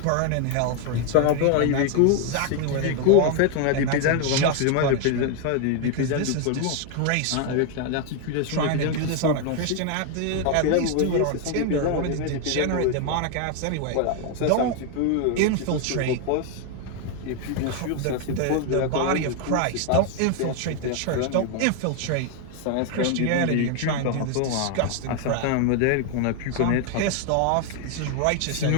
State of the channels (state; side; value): different; both; correlation 0.01